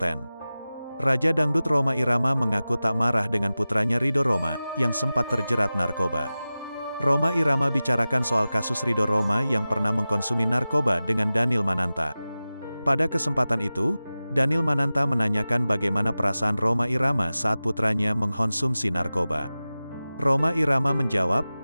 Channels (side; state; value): both; inverted; correlation -0.96